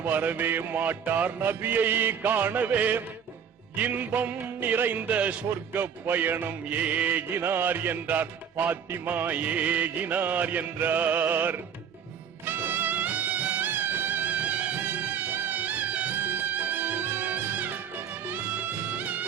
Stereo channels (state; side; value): quieter; left; 7.6 dB